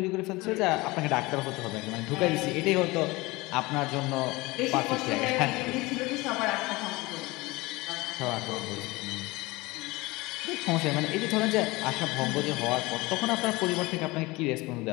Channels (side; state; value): right; quieter; 22.1 dB